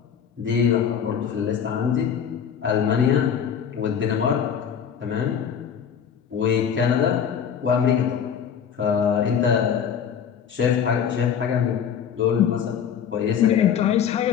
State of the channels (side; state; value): right; quieter; 7.9 dB